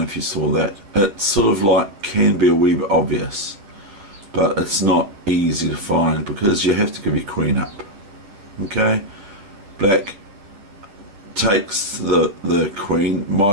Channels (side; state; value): left; late; 10 ms